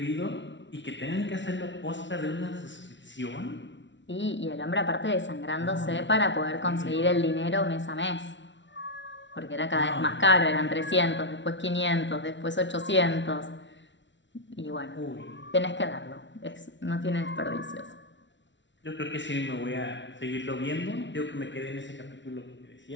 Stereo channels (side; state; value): right; late; 0.53 ms